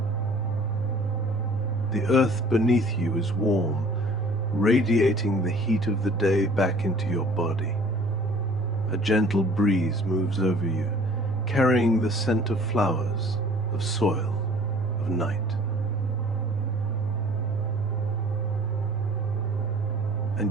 The earth beneath you is warm, radiating the heat of the day back into your body. A gentle breeze moves over you, carrying the scent of flowers, of soil, of night.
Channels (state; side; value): normal; both; correlation 0.51